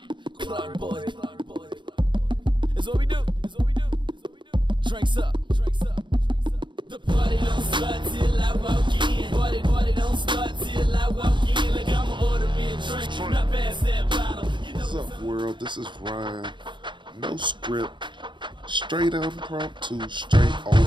Clark boy. It's what we do. Drinks up. The party don't start till I walk in. Party don't start till I walk in. Like I'ma order me a drink, not pass that bottle. What's up, world? This is Ryan. No script. Straight impromptu, straight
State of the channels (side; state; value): left; late; 0.23 ms